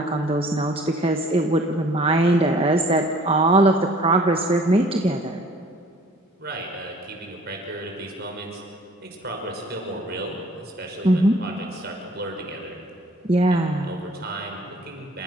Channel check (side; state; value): both; normal; correlation 0.53